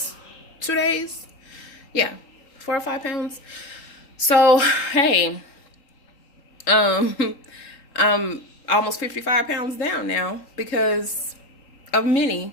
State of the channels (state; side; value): late; right; 3.6 ms